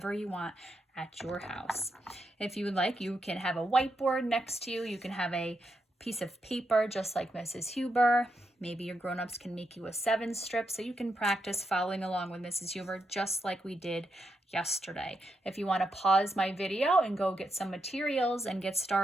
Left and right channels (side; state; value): both; normal; correlation 0.83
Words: you want at your house. If you would like, you can have a whiteboard next to you. You can have a piece of paper just like Mrs. Huber. Maybe your grown-ups can make you a 7 strip so you can practice following along with Mrs. Huber just like we did yesterday. If you want to pause my video and go get some materials and get